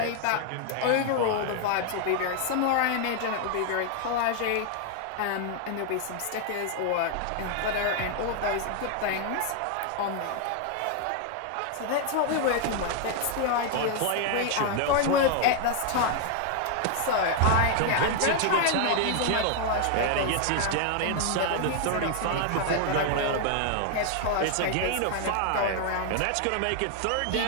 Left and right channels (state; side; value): different; both; correlation 0.00